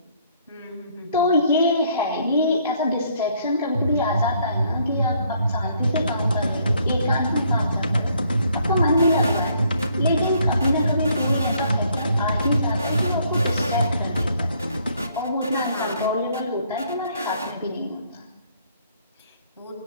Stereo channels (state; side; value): inverted; both; correlation -0.66